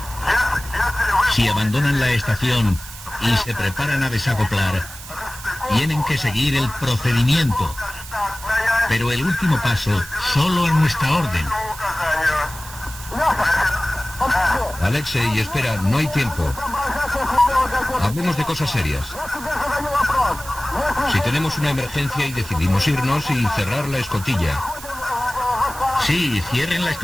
Si abandonan la estación y se preparan a desacoplar, tienen que seguir el procedimiento. Pero el último paso, solo a nuestra orden. Alexei, espera, no hay tiempo. Hablemos de cosas serias. Si tenemos una emergencia y decidimos irnos y cerrar la escotilla. Sí, cierren la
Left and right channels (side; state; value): right; noise; hiss, 14 dB below the sound